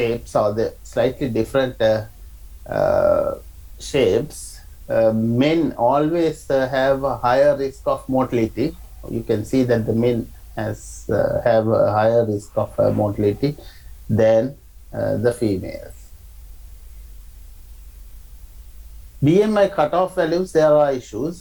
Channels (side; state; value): both; identical; correlation 1.00